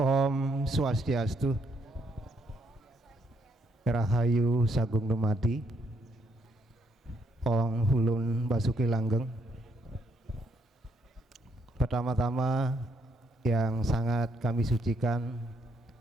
Swastiastu, Rahayu Sagung Dumadi, Om Hulun Basuki Langgeng. Pertama-tama yang sangat kami sucikan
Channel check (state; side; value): normal; both; correlation 0.73